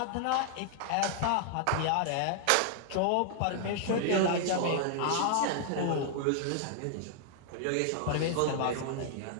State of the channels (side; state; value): both; different; correlation 0.00